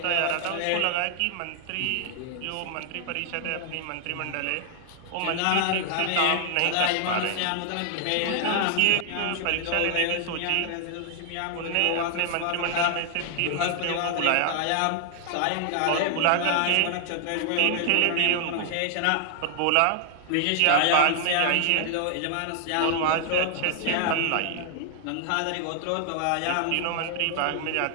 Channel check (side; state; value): both; different; correlation 0.00